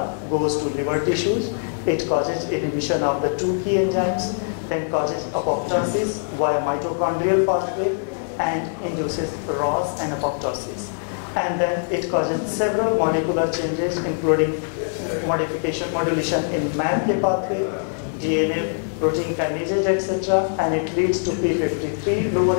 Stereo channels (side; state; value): right; silent; digital silence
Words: goes to liver tissues, it causes inhibition of the two key enzymes, then causes apoptosis via mitochondrial pathway and induces ROS and apoptosis. And then it causes several molecular changes, including modulation in MAPK pathway, DNA, protein kinases, etc. And it leads to P53